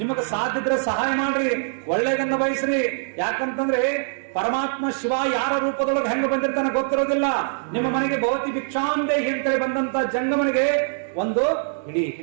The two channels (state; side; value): silent; left; digital silence